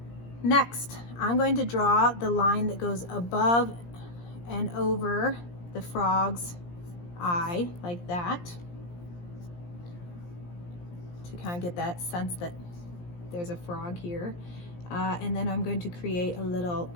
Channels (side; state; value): right; late; 17 ms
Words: next, I'm going to draw the line that goes above and over the frog's eye, like that, to kind of get that sense that there's a frog here. And then I'm going to create a little